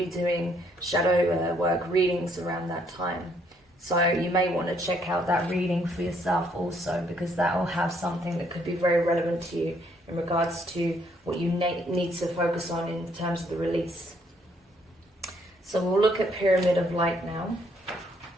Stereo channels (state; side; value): normal; both; correlation 0.69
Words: doing shadow work readings around that time. So you may want to check out that reading for yourself also, because that will have something that could be very relevant to you in regards to what you need to focus on in terms of the release. So we'll look at Pyramid of Light now.